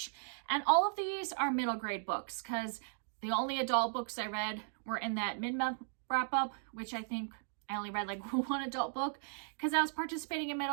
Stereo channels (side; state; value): left; silent; digital silence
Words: And all of these are middle grade books, because the only adult books I read were in that mid-month wrap-up, which I think I only read like one adult book, because I was participating in